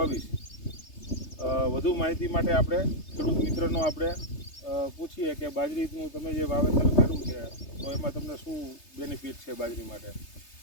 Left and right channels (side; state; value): right; late; 3.3 ms